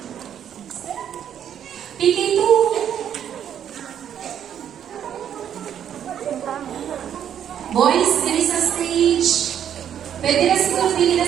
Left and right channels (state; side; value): quieter; left; 9.4 dB